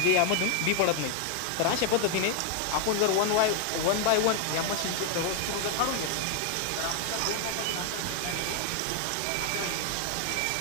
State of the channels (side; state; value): both; different; correlation 0.00